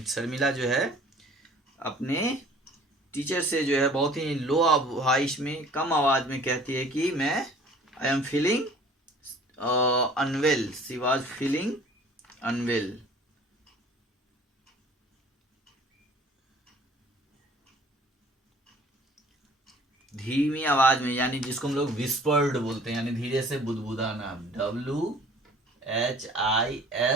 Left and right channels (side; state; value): both; normal; correlation 0.51